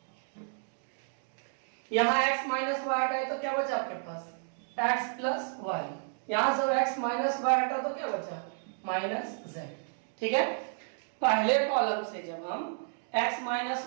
यहाँ x माइनस वाई हटाए तो क्या बचा आपके पास x प्लस वाई, यहां से x माइनस वाई हटा तो क्या बचा माइनस z। ठीक है, पहले कॉलम से जब हम x माइनस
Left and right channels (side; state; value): left; silent; digital silence